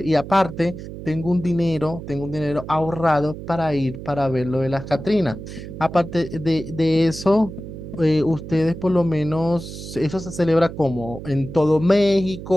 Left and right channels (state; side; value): noise; right; hum, 11 dB below the sound